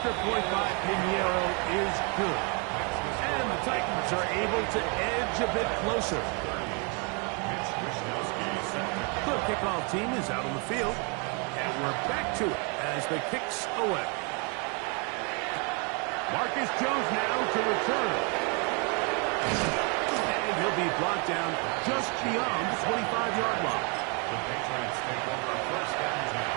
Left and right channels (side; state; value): left; quieter; 34.8 dB